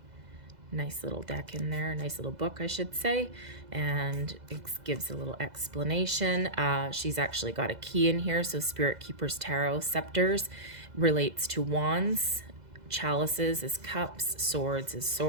Nice little deck in there, nice little book, I should say, and it gives a little explanation. She's actually got a key in here, so Spirit Keeper's Tarot. Scepters relates to wands, chalices is cups, swords is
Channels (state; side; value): late; left; 2.0 ms